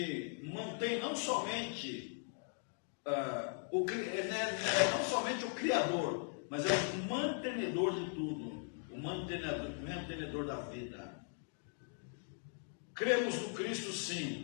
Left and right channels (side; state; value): right; silent; 52 dB below the other